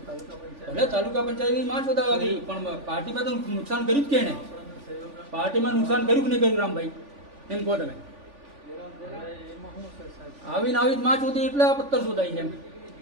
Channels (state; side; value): late; left; 3.5 ms